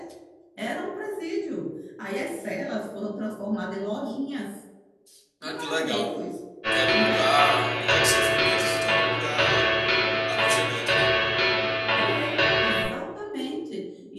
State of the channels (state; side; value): identical; both; correlation 1.00